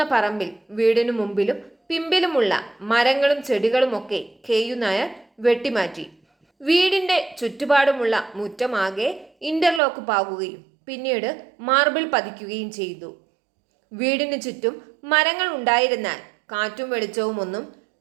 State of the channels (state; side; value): drops out; left; at 9.8 s